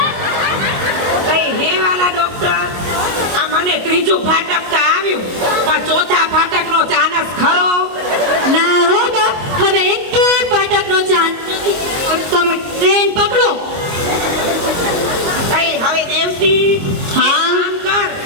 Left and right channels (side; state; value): left; late; 22 ms